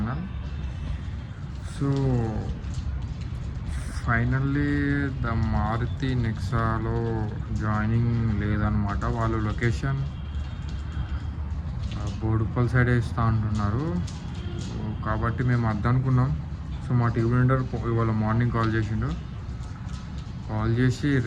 So finally the Maruti నెక్సాలో జాయినింగ్ లేదనమాట. వాళ్ళు లొకేషన్ బోడుప్పల్ సైడ్ ఇస్తా అంటున్నారు. కాబట్టి మేము అద్దనుకున్నాం. సో మా టీమ్ లీడర్ ఇవాళ మార్నింగ్ కాల్ చేసి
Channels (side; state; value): both; identical; correlation 1.00